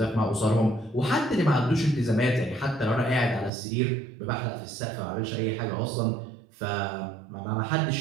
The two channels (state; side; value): drops out; left; at 3.5 s